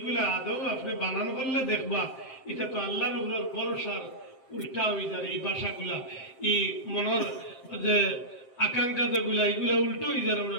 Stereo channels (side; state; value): right; late; 7.6 ms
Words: আদৌ আপনি বানান করলে দেখবা এটা তো আল্লাহর উপর ভরসার উল্টা হয়ে যায়। এই ভাষাগুলা, এই মনের যে আকাঙ্ক্ষা যেগুলা, এগুলা উল্টো হয়ে যায়, আমরা